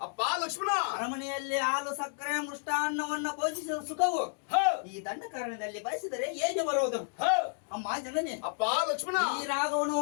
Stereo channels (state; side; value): silent; right; 57 dB below the other